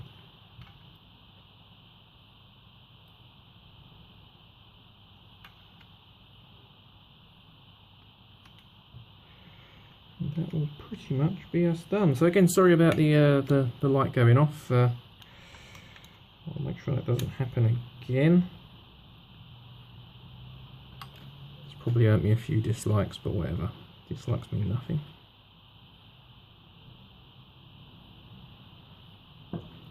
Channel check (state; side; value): identical; both; correlation 1.00